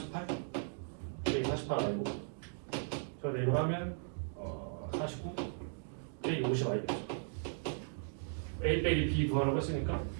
여기 48 아니고 저 내로 하면 49 빼기 50 아니겠죠. A 빼기 B 구하라고 했으니까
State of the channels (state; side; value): silent; left; digital silence